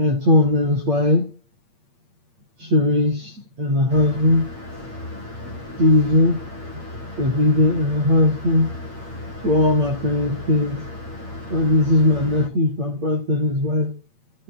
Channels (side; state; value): left; late; 8.7 ms